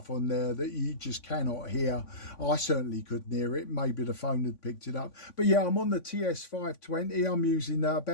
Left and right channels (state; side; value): late; right; 3.5 ms